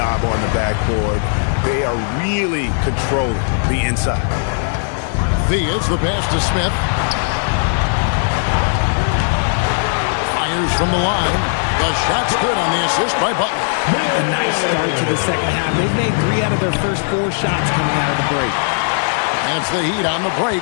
on the backboard. They are really controlling the inside. Theus, the pass to Smith. Fires from the line. The shot's good on the assist by Butler. A nice start to the second half. They've made 3 out of their first 4 shots coming out of the break. And it's the Heat on the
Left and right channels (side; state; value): right; silent; digital silence